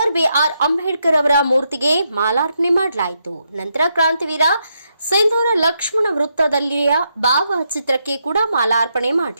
ಬಿಆರ್ ಅಂಬೇಡ್ಕರ್ ಅವರ ಮೂರ್ತಿಗೆ ಮಾಲಾರ್ಪಣೆ ಮಾಡಲಾಯಿತು. ನಂತರ ಕ್ರಾಂತಿವೀರ ಸಿಂಧೂರ ಲಕ್ಷ್ಮಣ ವೃತ್ತದಲ್ಲಿಯ ಭಾವಚಿತ್ರಕ್ಕೆ ಕೂಡ ಮಾಲಾರ್ಪಣೆ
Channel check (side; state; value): both; inverted; correlation -0.81